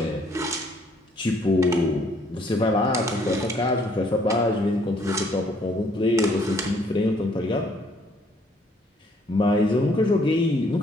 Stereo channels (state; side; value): normal; both; correlation 0.64